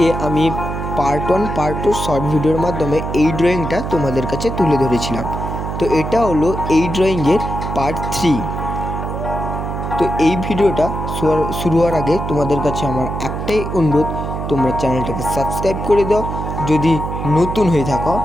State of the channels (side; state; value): right; noise; hum, 5 dB below the sound